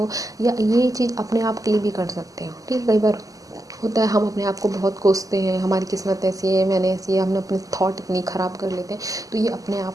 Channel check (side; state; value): left; late; 0.17 ms